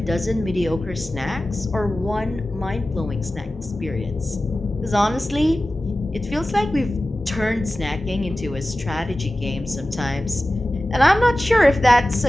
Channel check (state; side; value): normal; both; correlation 0.95